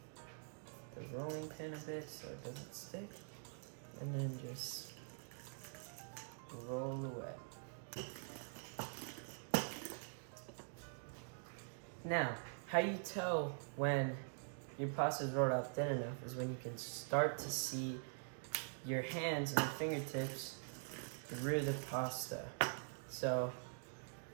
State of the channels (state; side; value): silent; left; digital silence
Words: the rolling pin a bit so it doesn't stick, and then just roll away. Now, how you tell when your pasta is rolled out thin enough is when you can start to see your hands and your fingertips through the pasta. So